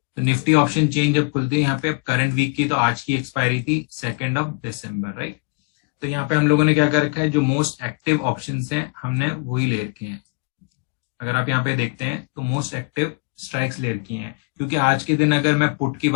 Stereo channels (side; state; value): right; quieter; 33.2 dB